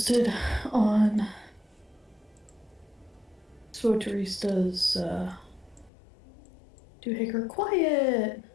on SWTORista's Doohaker. Quiet!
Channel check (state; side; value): drops out; right; at 5.9 s